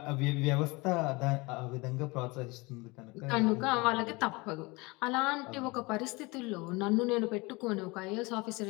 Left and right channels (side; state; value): right; quieter; 25.1 dB